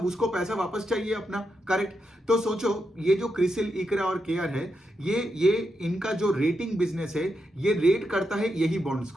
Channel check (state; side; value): normal; both; correlation 0.84